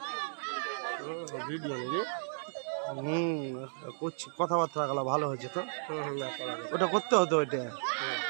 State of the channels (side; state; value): left; silent; digital silence